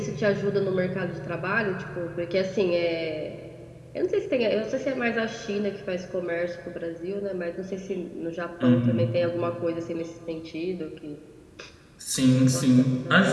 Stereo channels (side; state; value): both; identical; correlation 1.00